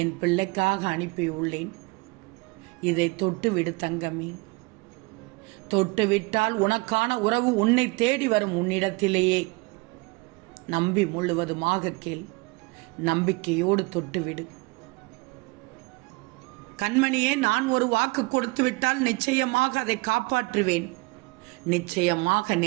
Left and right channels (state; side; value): quieter; left; 26.3 dB